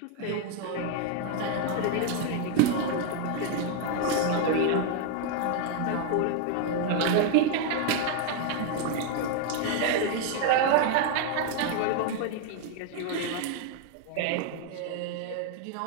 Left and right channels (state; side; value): different; both; correlation 0.00